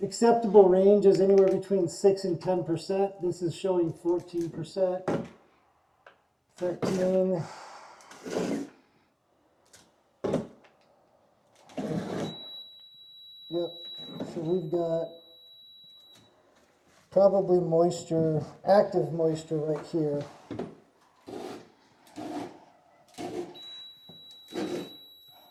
Acceptable range is anywhere between 6 and 10%. This is showing 14%, 13. Yep, so we've got probably moisture, active moisture right here.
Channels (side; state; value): both; identical; correlation 1.00